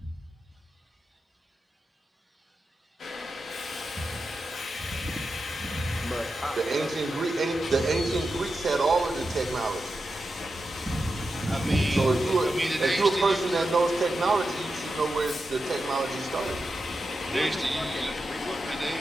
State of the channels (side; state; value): both; normal; correlation 0.89